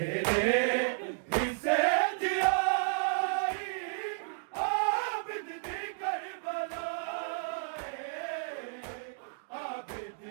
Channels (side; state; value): left; silent; digital silence